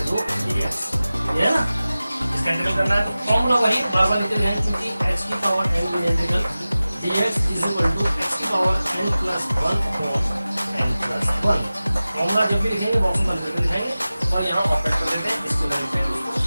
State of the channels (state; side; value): inverted; both; correlation -0.96